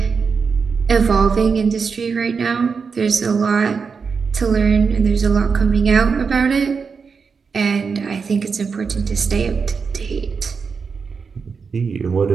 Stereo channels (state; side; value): quieter; left; 5.5 dB